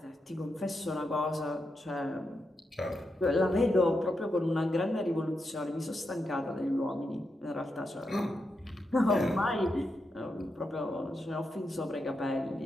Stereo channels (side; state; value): both; normal; correlation 0.85